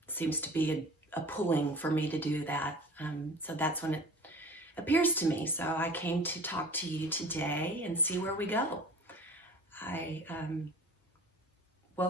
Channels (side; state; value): both; normal; correlation 0.41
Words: seems to be a pulling for me to do that. So that's when it appears to me. So I came to talk to you today and see where we go. I